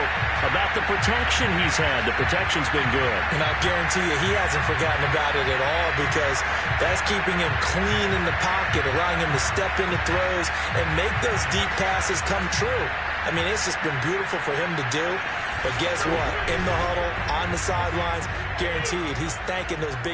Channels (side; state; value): both; identical; correlation 1.00